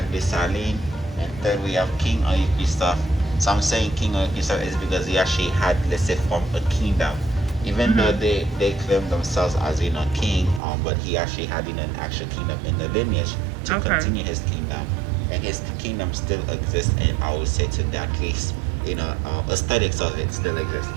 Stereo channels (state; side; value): drops out; left; at 10.6 s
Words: Dessalines, and third, we have King Henri Christophe. So I'm saying King Henri Christophe is because he actually had, let's say, formed a kingdom. Even though they claim themselves as king, but he actually had an actual kingdom in the lineage to continue his kingdom, and his kingdom still exists. And I would say to that case, aesthetics of it still exists.